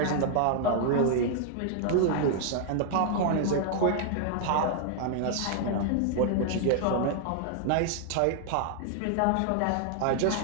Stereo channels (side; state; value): both; different; correlation 0.00